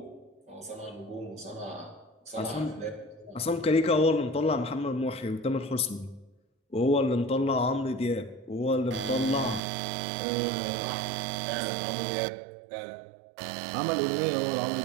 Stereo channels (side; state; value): left; drops out; at 9.6 s